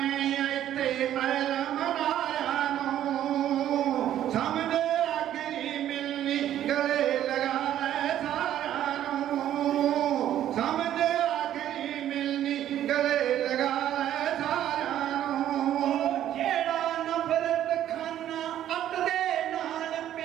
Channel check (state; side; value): quieter; left; 11.6 dB